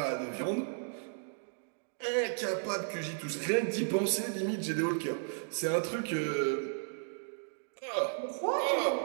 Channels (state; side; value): silent; left; digital silence